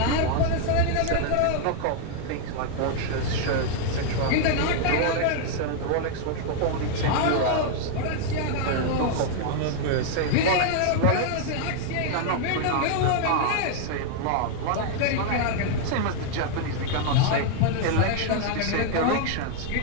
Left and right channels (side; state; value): both; different; correlation 0.00